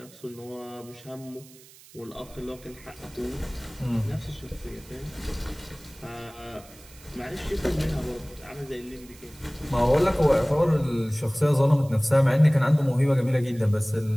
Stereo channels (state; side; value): noise; right; hiss, 23 dB below the sound